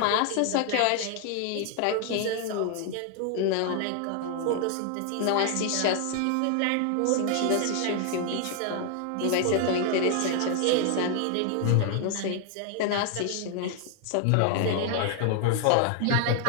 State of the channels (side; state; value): both; different; correlation 0.00